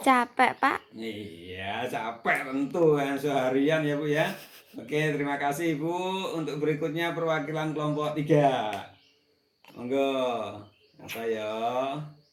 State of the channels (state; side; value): identical; both; correlation 1.00